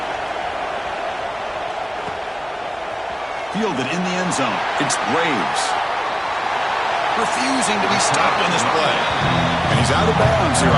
Fielded in the end zone. It's Graves. Refusing to be stopped on this play. And he's out of bounds here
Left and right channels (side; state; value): both; identical; correlation 1.00